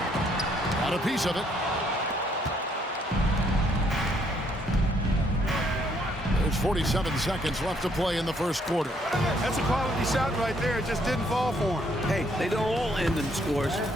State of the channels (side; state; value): both; normal; correlation 0.68